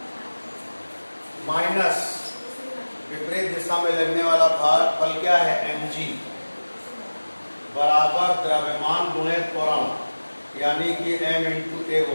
माइनस विपरीत दिशा में लगने वाला भार बल क्या है, mg बराबर द्रव्यमान गुणे त्वरण यानी कि m × a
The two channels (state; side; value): inverted; both; correlation -1.00